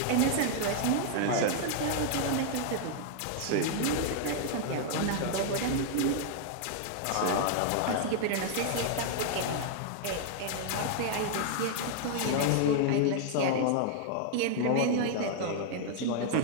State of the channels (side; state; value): both; different; correlation 0.00